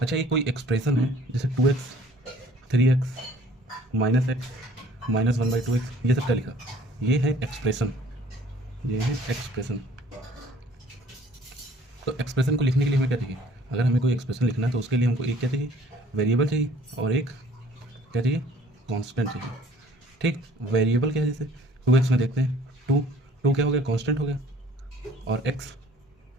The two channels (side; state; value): both; normal; correlation 0.54